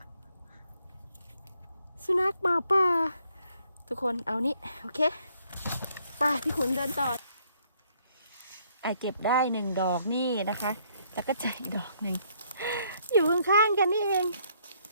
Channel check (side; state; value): both; inverted; correlation -0.68